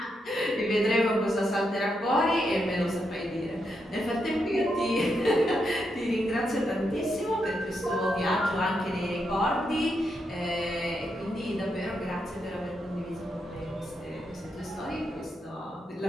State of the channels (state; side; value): normal; both; correlation 0.82